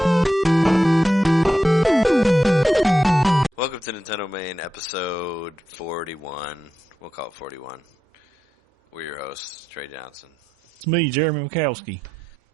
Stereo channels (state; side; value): normal; both; correlation 0.87